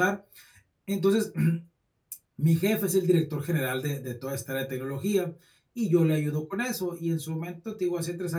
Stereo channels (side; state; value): both; identical; correlation 1.00